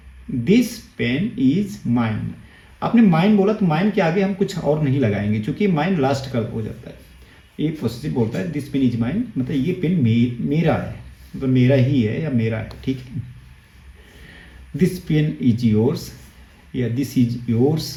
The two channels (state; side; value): identical; both; correlation 1.00